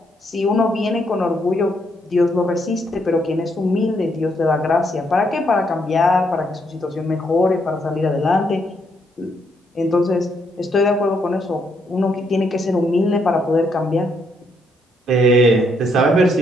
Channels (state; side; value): normal; both; correlation 0.74